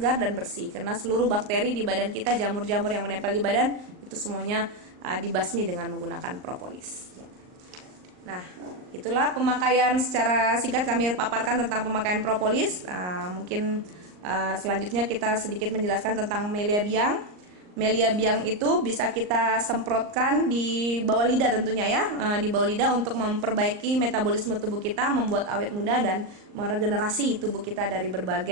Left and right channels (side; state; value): left; late; 39 ms